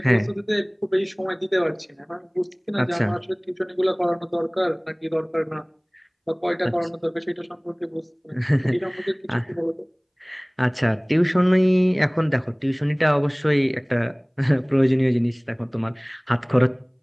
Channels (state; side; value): identical; both; correlation 1.00